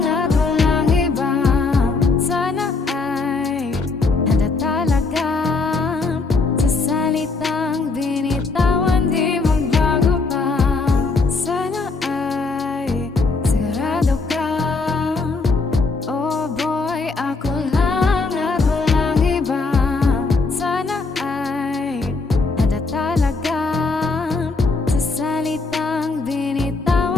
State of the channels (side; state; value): right; quieter; 4.0 dB